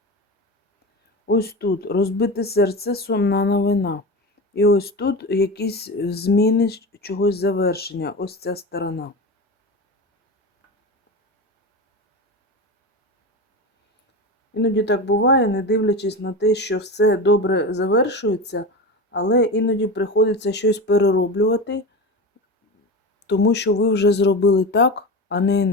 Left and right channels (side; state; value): both; normal; correlation 0.25